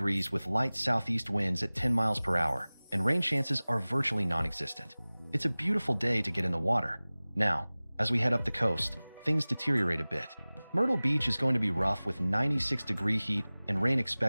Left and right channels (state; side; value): inverted; both; correlation -0.99